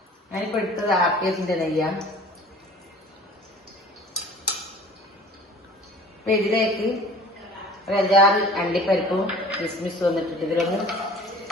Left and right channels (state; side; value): normal; both; correlation 0.46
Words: ഞാനിപ്പോ എടുത്തത് ആർക്കേസിന്റെ നെയ്യാണ്. അപ്പൊ ഇതിലേക്ക് ഒരു 5-6 അണ്ടിപ്പരിപ്പും കിസ്മിസും വന്നിട്ടിട്ട് ഇതിലൊന്ന്